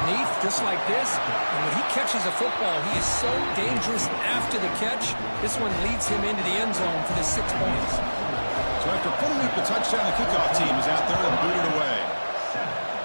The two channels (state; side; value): inverted; both; correlation -1.00